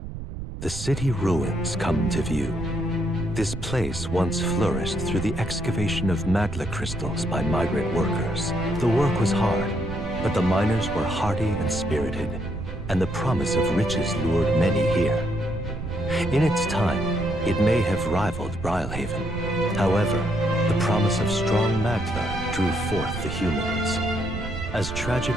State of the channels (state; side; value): noise; right; rumble, 8 dB below the sound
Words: The city ruins come to view. This place once flourished through the excavation of magla crystals by migrant workers. The work was hard, but the miners were hardy and spirited, and the promise of riches lured many here. In its time, it may have rivaled Brilhaven. However, the promise of strong magla drew forth the humans. As